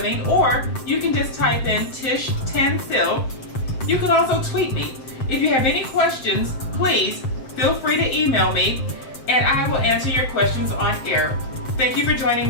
or you can just type in Tish Tansil. You can also tweet me. If you have any questions, please feel free to email me and I will answer your questions on air. Thank you for joining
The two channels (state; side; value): late; right; 7.7 ms